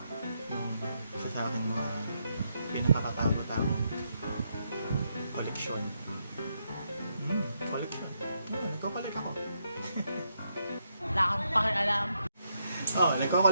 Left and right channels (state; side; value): inverted; both; correlation -0.79